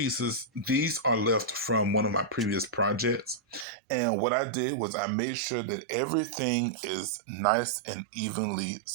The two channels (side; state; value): left; drops out; at 3.7 s